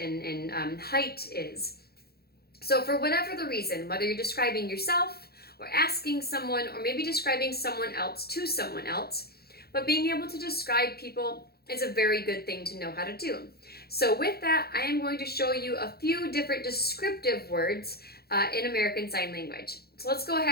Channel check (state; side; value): late; right; 0.46 ms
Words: height is. So for whatever the reason, whether you're describing yourself or asking someone or maybe describing someone else to someone else, but being able to describe people is a very good thing to know how to do. So with that, I am going to show you a few different descriptive words in American Sign Language. So let's go